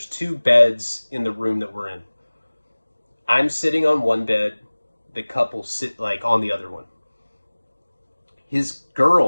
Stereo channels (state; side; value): inverted; both; correlation -1.00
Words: 2 beds in the room that we're in. I'm sitting on one bed. The couple sit like on the other one. His